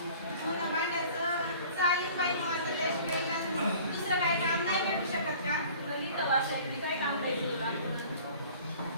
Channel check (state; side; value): inverted; both; correlation -0.47